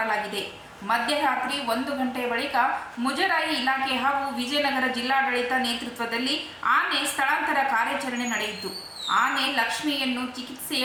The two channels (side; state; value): both; identical; correlation 1.00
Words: ಮಧ್ಯರಾತ್ರಿ 1 ಗಂಟೆಯ ಬಳಿಕ ಮುಜರಾಯಿ ಇಲಾಖೆ ಹಾಗೂ ವಿಜಯನಗರ ಜಿಲ್ಲಾಡಳಿತ ನೇತೃತ್ವದಲ್ಲಿ ಆನೆ ಸ್ಥಳಾಂತರ ಕಾರ್ಯಾಚರಣೆ ನಡೆಯಿತು. ಆನೆ ಲಕ್ಷ್ಮಿಯನ್ನು ಚಿಕಿತ್ಸೆಯ